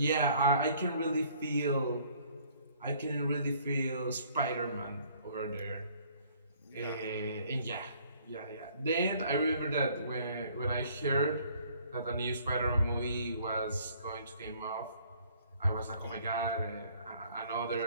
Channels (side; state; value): both; inverted; correlation -0.59